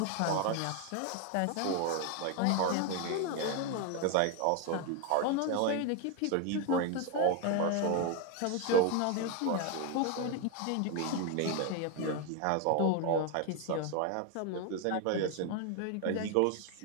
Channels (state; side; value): different; both; correlation 0.01